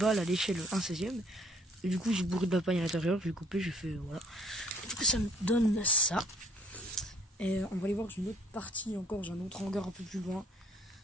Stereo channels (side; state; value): both; normal; correlation 0.58